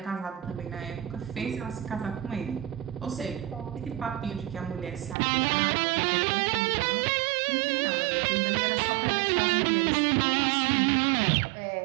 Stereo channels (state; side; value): drops out; left; at 5.2 s